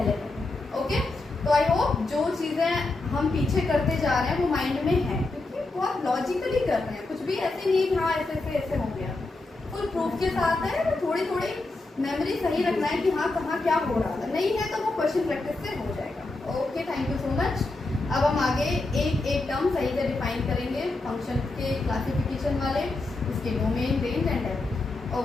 ओके, तो आई होप जो चीज़ें हम पीछे करते जा रहे हैं वो माइंड में है, क्योंकि बहुत लॉजिकली कर रहे हैं, कुछ भी ऐसे नहीं कि हाँ ऐसे हो गया। फुल प्रूफ के साथ है, थोड़ी थोड़ी मेमोरी सही रखना है कि हाँ कहाँ क्या हो रहा है, नहीं है तो वो क्वेश्चन प्रैक्टिस से हो जाएगा। Okay, thank you so much. अब हम आगे एक एक टर्म सही से डिफाइन करेंगे फंक्शन के क्लासिफिकेशन वाले, उसके domain, range and depth.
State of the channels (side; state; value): right; quieter; 3.1 dB